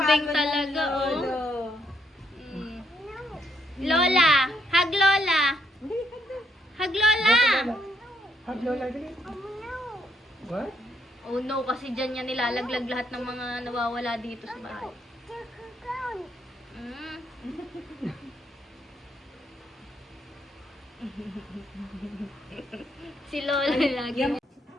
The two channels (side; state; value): both; normal; correlation 0.73